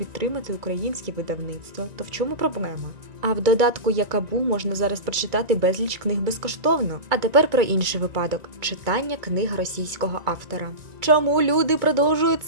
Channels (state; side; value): late; left; 2.3 ms